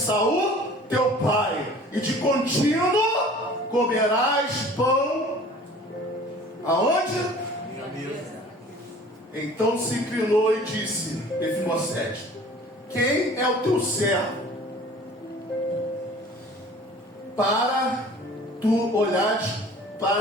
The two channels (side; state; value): both; normal; correlation 0.47